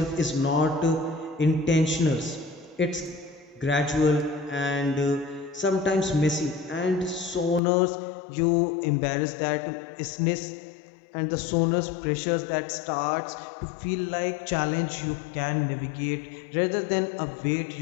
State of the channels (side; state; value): right; drops out; at 7.6 s